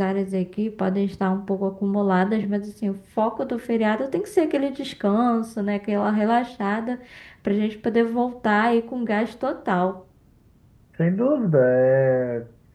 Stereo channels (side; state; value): both; identical; correlation 1.00